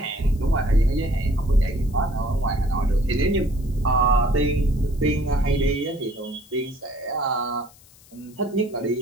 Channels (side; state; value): left; noise; hiss, 26 dB below the sound